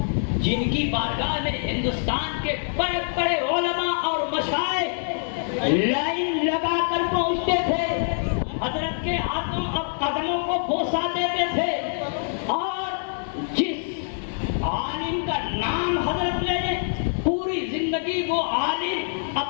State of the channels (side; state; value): right; silent; digital silence